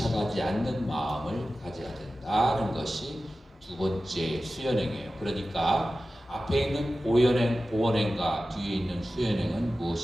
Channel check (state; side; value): normal; both; correlation 0.95